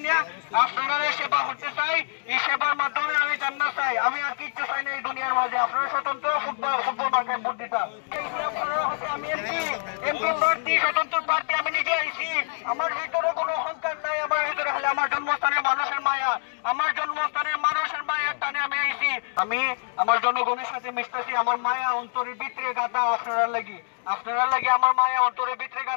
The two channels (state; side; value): silent; right; digital silence